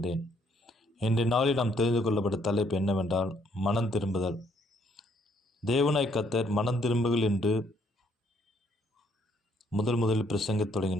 இன்றைய நாளில் நாம் தெரிந்து கொள்ளப்பட்ட தலைப்பு என்னவென்றால் மனம் திரும்புதல். தேவனாய் கர்த்தர் மனம் திரும்புகள் என்று முதலில் பிரசங்கத்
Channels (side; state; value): both; normal; correlation 0.68